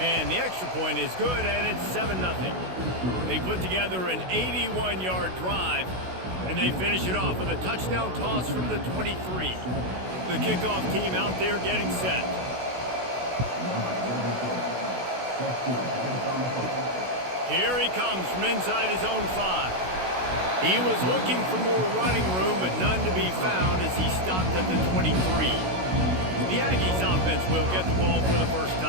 the extra point is good, and it's 7-0. They put together an 81-yard drive, and they finish it off with a touchdown toss from the 23. The kickoff team out there getting set. Here he comes from inside his own 5. He was looking for more running room, but none to be found as he stopped at the 23. The Aggies offense will get the ball for the first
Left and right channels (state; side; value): late; left; 16 ms